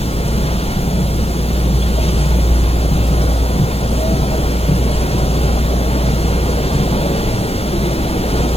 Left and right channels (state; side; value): normal; both; correlation 0.88